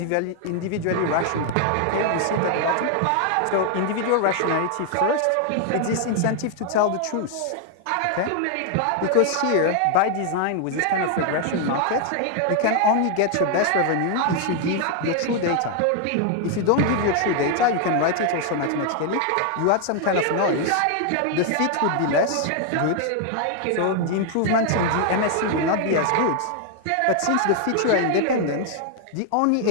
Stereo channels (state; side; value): different; both; correlation 0.00